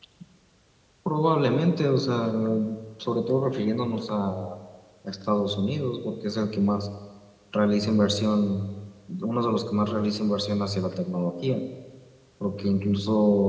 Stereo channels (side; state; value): both; identical; correlation 1.00